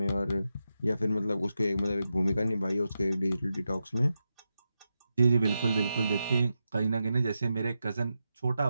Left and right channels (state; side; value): inverted; both; correlation -0.88